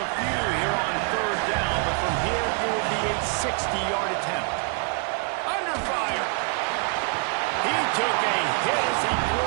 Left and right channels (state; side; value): quieter; left; 38.6 dB